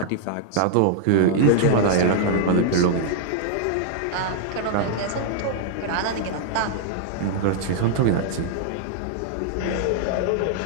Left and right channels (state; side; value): different; both; correlation -0.01